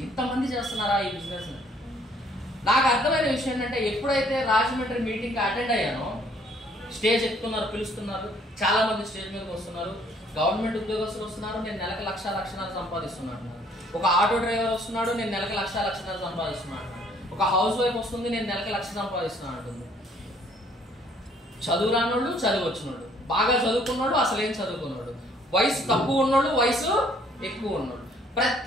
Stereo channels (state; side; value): normal; both; correlation 0.62